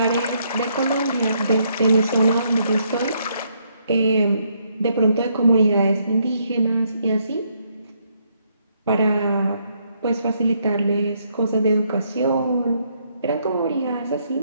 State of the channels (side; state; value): both; inverted; correlation -0.73